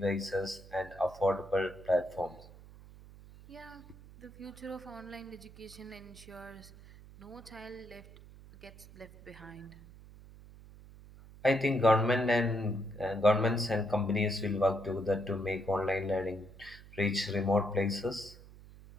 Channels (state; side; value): noise; right; hum, 19 dB below the sound